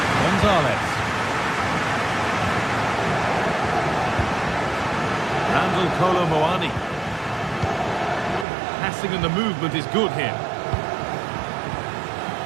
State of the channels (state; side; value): drops out; left; at 8.5 s